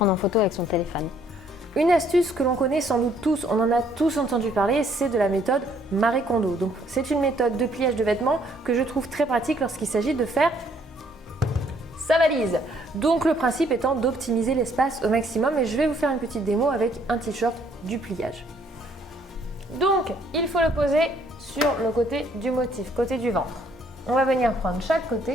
en photo avec son téléphone. Une astuce que l'on connaît sans doute tous, on en a tous entendu parler, c'est de la méthode Marie Kondo. Donc c'est une méthode de pliage de vêtements que je trouve très pratique lorsqu'il s'agit de faire sa valise. Donc le principe étant d'optimiser l'espace au maximum et je vais vous faire une petite démo avec un t-shirt du pliage. Donc il faut le poser sur le côté du motif, côté du ventre. On va venir prendre chaque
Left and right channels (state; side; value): normal; both; correlation 0.65